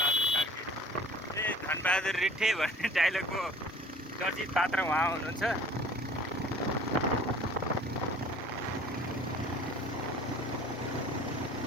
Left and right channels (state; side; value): normal; both; correlation 0.49